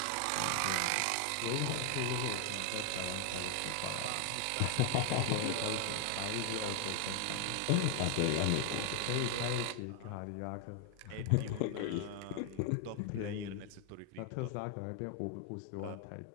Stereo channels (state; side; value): different; both; correlation 0.00